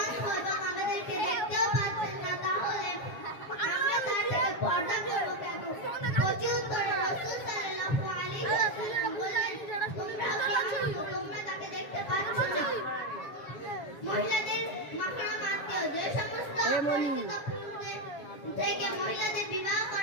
অন্ধ এবং আমাদেরকে দেখতেও পাচ্ছেন না, তাহলে আমরা তার থেকে পর্দা করব কেন? প্রত্যুত্তরে রাসূল সাল্লাল্লাহু আলাইহি ওয়াসাল্লাম বললেন, তোমরা তাকে দেখতে পাচ্ছ না। মহিলাদের মাহরম আত্মীয় যে সমস্ত থেকে মহিলাদের বিবাহ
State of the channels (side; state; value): right; late; 7.2 ms